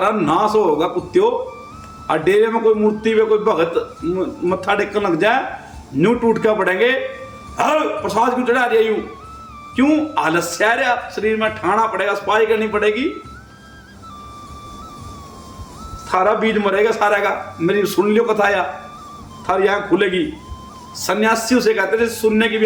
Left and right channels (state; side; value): identical; both; correlation 1.00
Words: नाश होगा कुत्तियों। और डेरे में कोई मूर्ति में कोई भगत मत्था टेकन लग जाए, न्यू टूट के पड़ेंगे। हर प्रसाद क्यों चढ़ा रही, क्यों आलस्य आ रहा, शरीर में ठाना पड़ेगा, सफाई करनी पड़ेगी, थारा बीज मरेगा सारा का। मेरी सुन लियो कथा, या थारी आंख खुलेगी। सन्यासी उसे कहते थे सुनने की भी